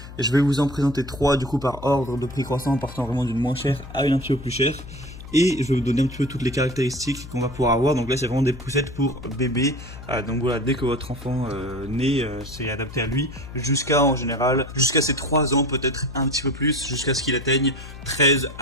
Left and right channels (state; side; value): noise; left; hum, 14 dB below the sound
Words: Et je vais vous en présenter 3 du coup par ordre de prix croissant, partant vraiment d'une moins chère à une un petit peu plus chère. Et je vais vous donner un petit peu toutes les caractéristiques qu'on va pouvoir avoir. Donc là c'est vraiment des poussettes pour bébé. Donc voilà, dès que votre enfant naît, c'est adapté à lui. En général, jusqu'à ses 3 ans, peut-être un petit peu plus, jusqu'à ce qu'il atteigne 13